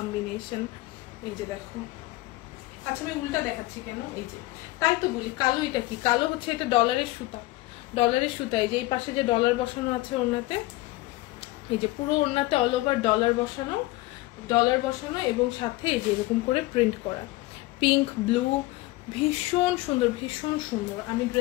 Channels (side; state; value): right; quieter; 19.4 dB